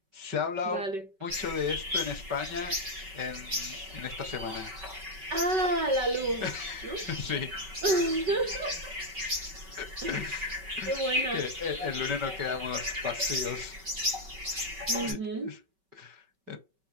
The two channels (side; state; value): left; late; 5.2 ms